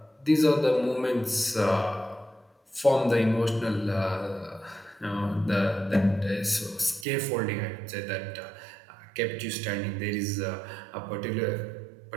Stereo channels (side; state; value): left; drops out; at 7.1 s